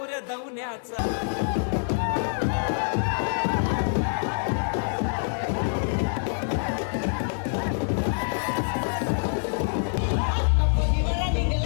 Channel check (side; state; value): right; silent; digital silence